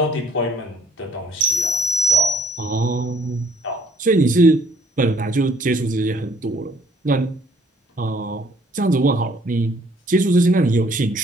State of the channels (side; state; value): both; normal; correlation 0.61